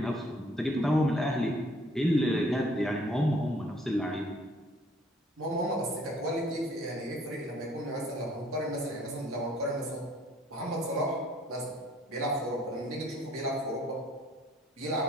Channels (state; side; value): normal; both; correlation 0.59